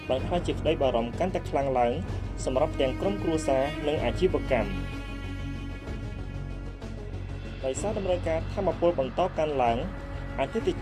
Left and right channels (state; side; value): identical; both; correlation 1.00